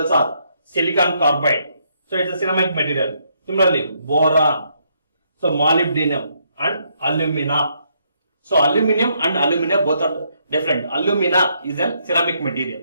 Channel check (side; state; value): both; inverted; correlation -0.74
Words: are silicon carbide. So it's a ceramic material. Similarly, boron, so molybdenum and alumina. So aluminum and alumina both are different. Alumina is a ceramic